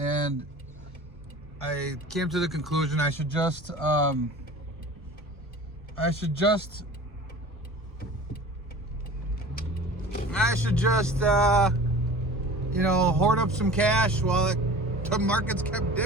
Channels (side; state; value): both; normal; correlation 0.40